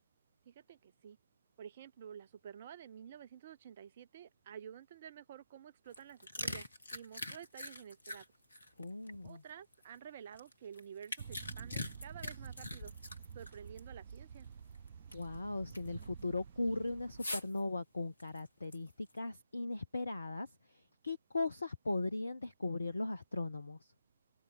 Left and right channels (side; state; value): both; inverted; correlation -0.89